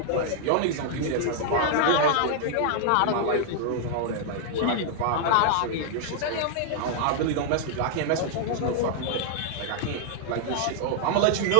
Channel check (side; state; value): both; different; correlation -0.01